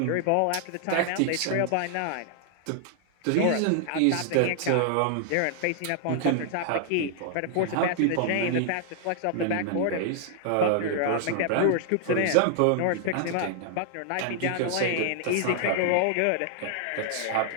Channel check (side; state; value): both; different; correlation 0.00